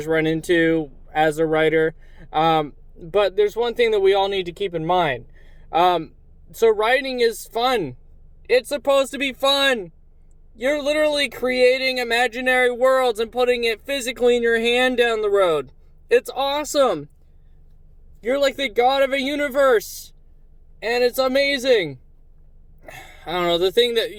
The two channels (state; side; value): identical; both; correlation 1.00